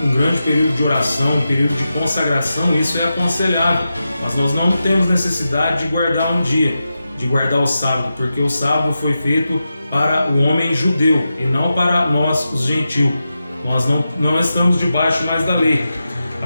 um grande período de oração, um período de consagração, isso é aconselhável. Mas nós não temos necessidade de guardar um dia, de guardar o sábado, porque o sábado foi feito para o homem judeu e não para nós, os gentios. Nós não estamos debaixo mais da lei.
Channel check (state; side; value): inverted; both; correlation -0.90